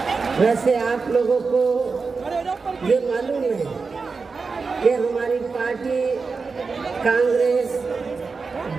वैसे आप लोगों को ये मालूम है कि हमारी पार्टी कांग्रेस,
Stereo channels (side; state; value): left; quieter; 4.6 dB